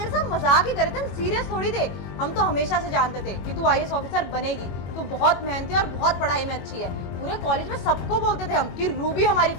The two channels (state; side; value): late; right; 21 ms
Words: साथ मजाक ही करे थे, हम सीरियस थोड़ी थे। हम तो हमेशा से जानते थे कि तू IAS ऑफिसर बनेगी, तू बहुत मेहनती और बहुत पढ़ाई में अच्छी है। पूरे कॉलेज में सबको बोलते थे हम कि रूबी हमारी